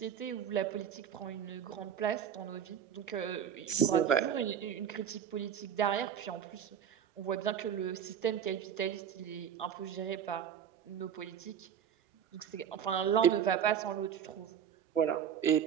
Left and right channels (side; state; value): left; quieter; 8.6 dB